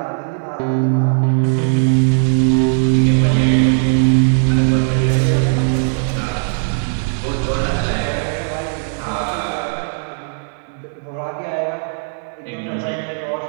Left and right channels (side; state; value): left; silent; digital silence